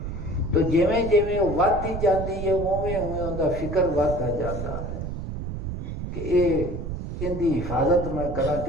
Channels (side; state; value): right; noise; rumble, 6 dB below the sound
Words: تو جویں جویں وہ ودتی جاندی ہے اوویں اوویں ان دا فکر ودتا جاندا ہے کہ ان دی حفاظت میں کراں